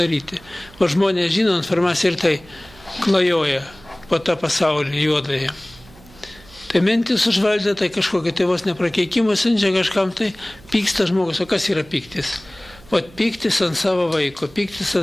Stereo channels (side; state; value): right; noise; hum, 24 dB below the sound